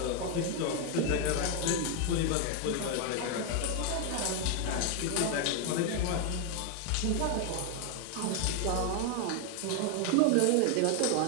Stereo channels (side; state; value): both; different; correlation 0.01